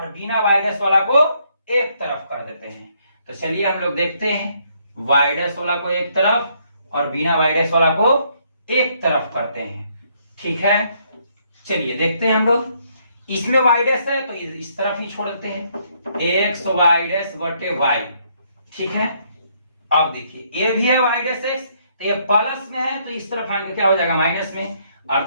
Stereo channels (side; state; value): both; inverted; correlation -0.70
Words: बिना y डैश वाला को एक तरफ कर देते हैं, तो चलिए हम लोग देखते हैं y डैश वाला को एक तरफ और बिना y डैश वाला को एक तरफ करते हैं, ठीक है। चलिए देखते हैं हम लोग, इसमें y डैश है तो इस तरफ ही छोड़ देते हैं x y डैश बटे y, ठीक है। अब देखिए ये भी है y डैश x, तो ये प्लस में है तो इस तरफ आएंगे क्या हो जाएगा माइनस में,